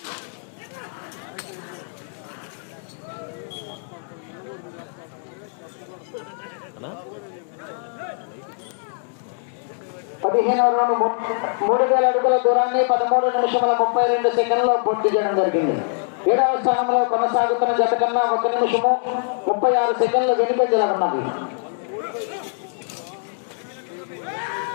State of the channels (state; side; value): silent; right; 63 dB below the other